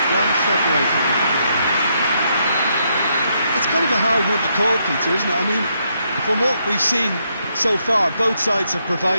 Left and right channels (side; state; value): both; inverted; correlation -0.77